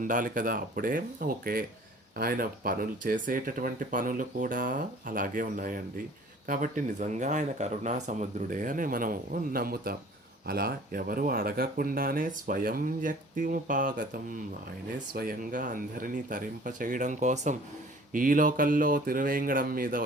కదా. అప్పుడే ఓకే, ఆయన పనులు చేసేటటువంటి పనులు కూడా అలాగే ఉన్నాయండి. కాబట్టి నిజంగా ఆయన కరుణా సముద్రుడే అని మనం నమ్ముతాం. అలా ఎవరు అడగకుండానే స్వయం వ్యక్తిముపాగతం, ఆయనే స్వయంగా అందరినీ తరింప చేయడం కోసం ఈ లోకల్లో తిరువేంగడం మీద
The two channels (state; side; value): normal; both; correlation 0.50